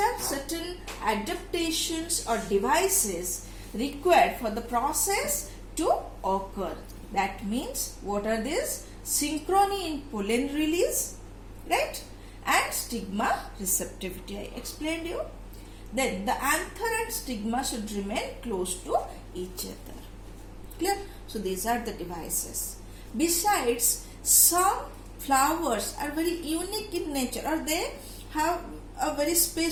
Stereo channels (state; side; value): identical; both; correlation 1.00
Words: certain adaptations or devices required for the process to occur. That means what are these? Synchrony in pollen release, right? And stigma receptivity. I explained you. Then the anther and stigma should remain close to each other. Clear? So these are the devices. Besides, some flowers are very unique in nature, or they have a very